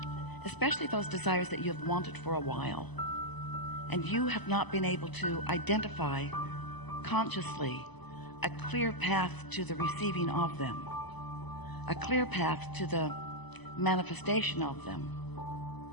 especially those desires that you have wanted for a while, and you have not been able to identify consciously a clear path to the receiving of them, a clear path to the manifestation of them,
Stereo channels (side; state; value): right; late; 1.0 ms